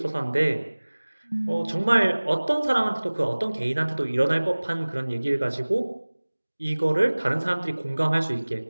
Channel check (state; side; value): inverted; both; correlation -1.00